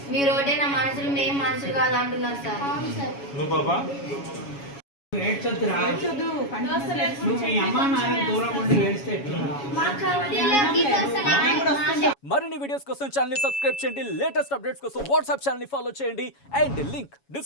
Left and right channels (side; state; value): right; late; 7.2 ms